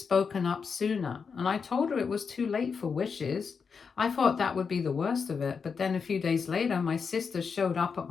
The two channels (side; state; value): right; quieter; 5.7 dB